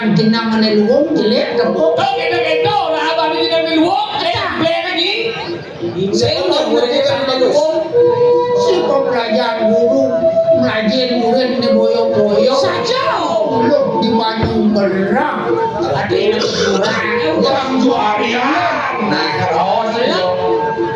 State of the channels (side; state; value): both; identical; correlation 1.00